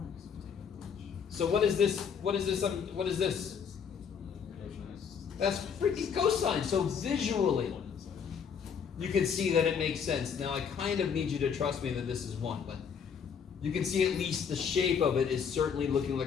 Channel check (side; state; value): right; quieter; 6.9 dB